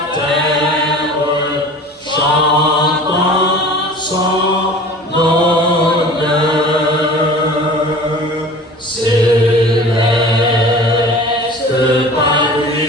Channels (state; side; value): normal; both; correlation 0.41